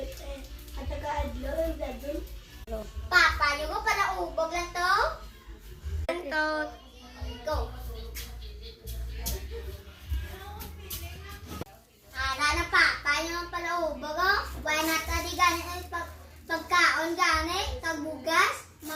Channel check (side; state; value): both; identical; correlation 1.00